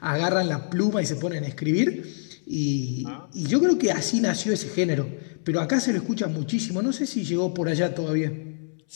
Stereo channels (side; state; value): right; silent; 61 dB below the other